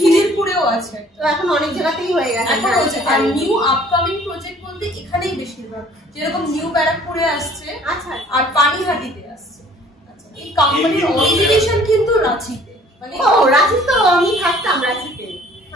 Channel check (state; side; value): normal; both; correlation 0.54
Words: আছে। তো এখন অনেক জায়গাতেই হয়ে গেছে। এখন হচ্ছে, আর নিউ আপকামিং প্রজেক্ট বলতে এখানেই বেশিরভাগ, যেরকম নিউ ব্যারাকপুরে আসছে, আচ্ছা, আর পানিহাটিতে আসছে। আচ্ছা, এই কোম্পানির অরিজিনেশন কিন্তু রাঁচিতে। মানে ও রাঁচি, তো আমি থাকতাম রাঁচিতে